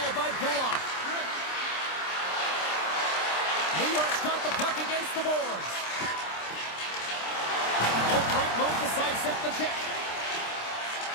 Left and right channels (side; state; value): right; late; 26 ms